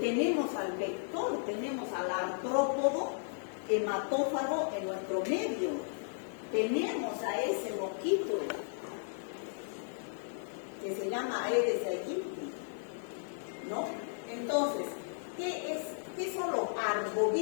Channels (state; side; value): silent; right; digital silence